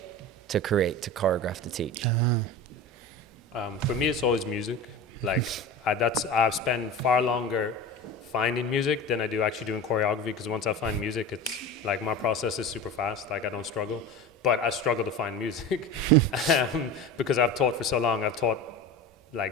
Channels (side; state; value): both; normal; correlation 0.30